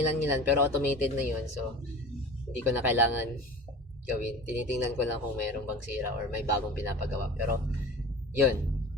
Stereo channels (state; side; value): normal; both; correlation 0.37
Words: pero automated na yun, so hindi ko na kailangan gawin. Tinitingnan ko lang kung mayroong bang sira or may bagong pinapagawa. Pero yun,